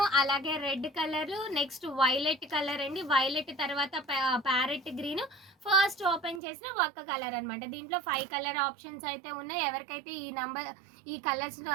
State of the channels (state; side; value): drops out; left; at 6.4 s